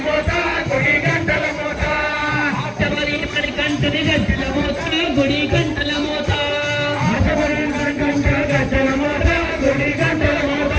మోత గుడి గంటల మోత ఎవరి మరి గంటని గజ్జల మోత గుడి గంటల మోత ఎవరి మరి గంట గజ్జల మోత గుడి గంటల మోత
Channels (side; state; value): both; identical; correlation 1.00